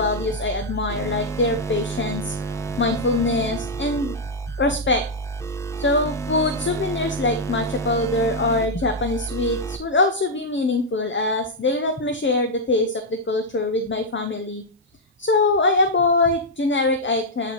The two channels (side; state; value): both; normal; correlation -0.02